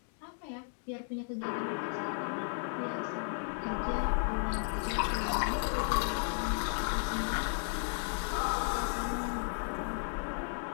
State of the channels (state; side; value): silent; right; 55 dB below the other